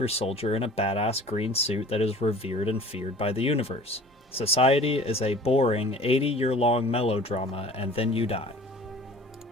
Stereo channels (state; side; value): normal; both; correlation 0.46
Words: soldier in a badass green suit that is revered and feared by the universe. Society is a boring 80-year-long melodrama, and then you die.